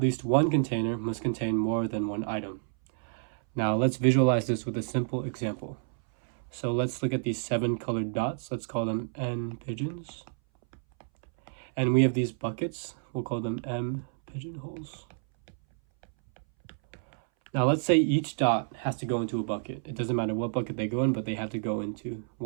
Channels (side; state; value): left; silent; 58 dB below the other